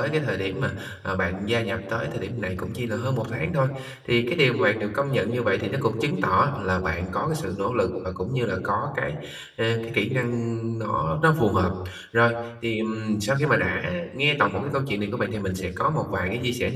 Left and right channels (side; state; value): both; identical; correlation 1.00